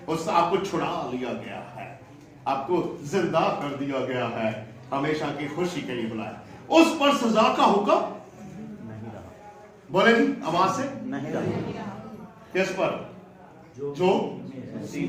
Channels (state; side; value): identical; both; correlation 1.00